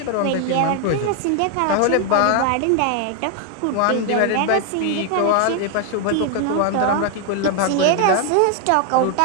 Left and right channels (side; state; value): both; different; correlation 0.00